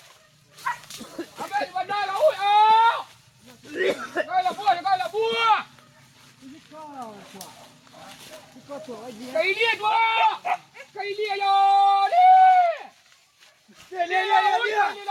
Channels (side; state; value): both; identical; correlation 1.00